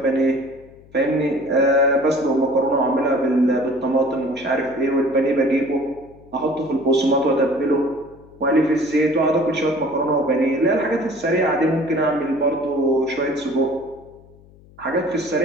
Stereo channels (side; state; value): left; noise; hum, 25 dB below the sound